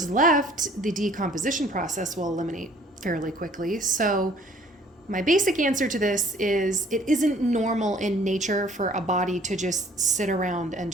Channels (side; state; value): both; normal; correlation 0.56